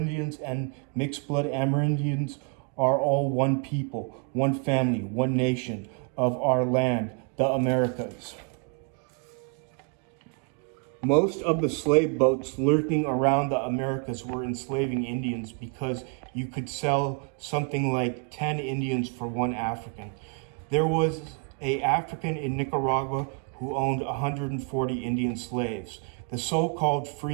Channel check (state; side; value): quieter; left; 36.1 dB